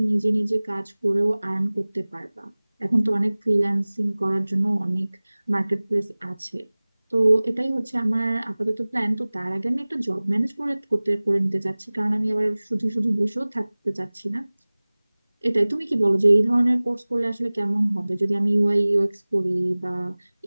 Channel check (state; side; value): inverted; both; correlation -1.00